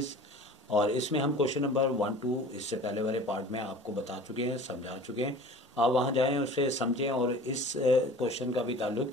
और इसमें हम क्वेश्चन नंबर 1-2 इससे पहले वाले पार्ट में आपको बता चुके हैं, समझा चुके हैं। आप वहां जाएं, उससे समझें, और इस क्वेश्चन का भी ताल्लुक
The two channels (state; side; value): normal; both; correlation 0.43